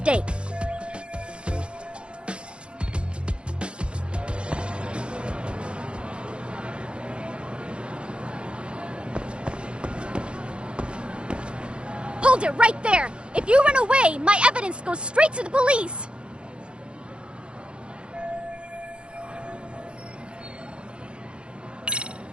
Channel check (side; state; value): left; late; 0.057 ms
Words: Hold it right there! If you run away, my evidence goes straight to the police!